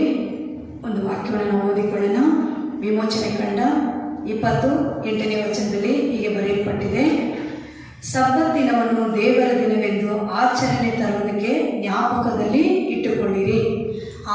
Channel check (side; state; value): both; identical; correlation 1.00